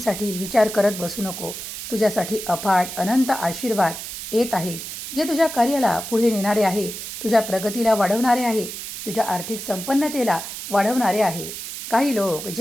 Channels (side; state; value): right; noise; hiss, 8 dB below the sound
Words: विचार करत बसू नको. तुझ्यासाठी अफाट अनंत आशीर्वाद येत आहेत जे तुझ्या कार्याला पुढे नेणारे आहे, तुझ्या प्रगतीला वाढवणारे आहे, तुझ्या आर्थिक संपन्नतेला वाढवणारे आहे. काही लोक